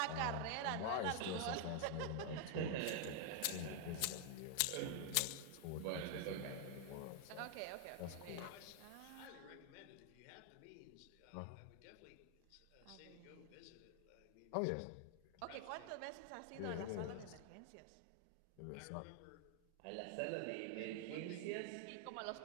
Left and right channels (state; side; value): different; both; correlation 0.00